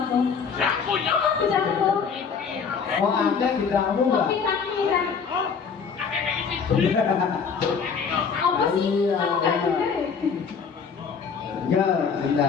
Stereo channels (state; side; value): quieter; right; 6.0 dB